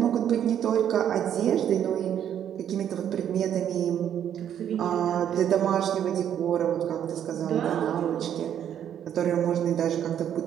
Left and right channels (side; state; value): left; quieter; 9.7 dB